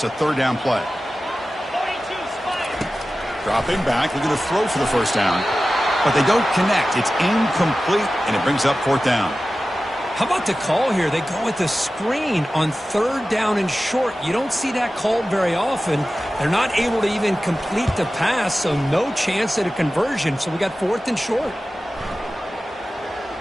a third down play. Dropping back, looking to throw for the first down. But they don't connect. It's incomplete, and it brings up fourth down. How about the call here? They go with the screen on third down and short. You don't see that called very often. They're not able to even complete the pass, so no chance at a conversion. So we got fourth and short.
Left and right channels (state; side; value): normal; both; correlation 0.95